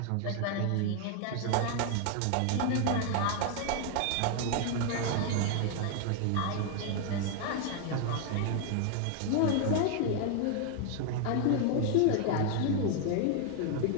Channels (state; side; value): different; both; correlation 0.00